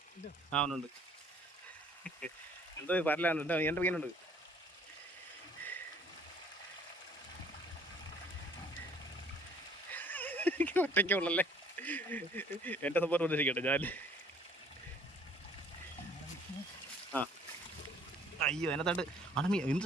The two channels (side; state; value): both; normal; correlation 0.57